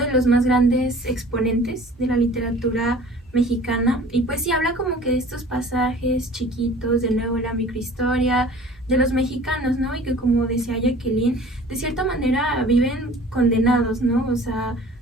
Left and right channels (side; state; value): both; normal; correlation 0.47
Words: de los más grandes exponentes de la literatura mexicana y pues sí habla como que de estos pasajes chiquitos, de nuevo la microhistoria de los mexicanos, ¿no? Y que como decía Jacqueline, de cierta manera viven condenados, ¿no? O sea,